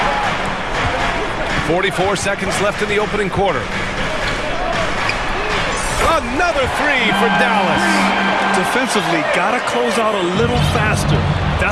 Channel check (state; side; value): identical; both; correlation 1.00